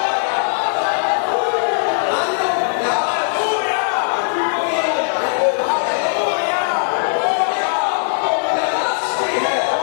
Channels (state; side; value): silent; right; digital silence